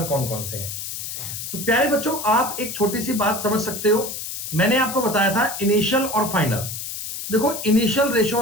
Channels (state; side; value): noise; left; hiss, 7 dB below the sound